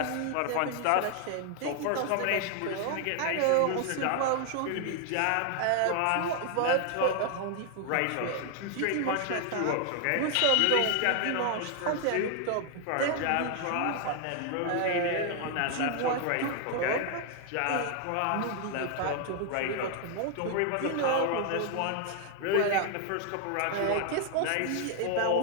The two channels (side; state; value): both; different; correlation 0.00